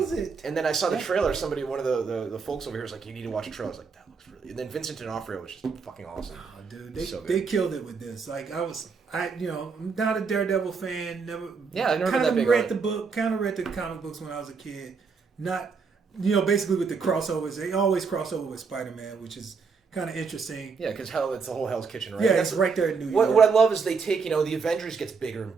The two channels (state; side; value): quieter; left; 5.2 dB